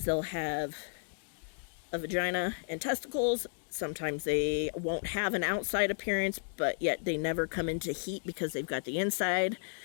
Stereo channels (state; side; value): silent; right; digital silence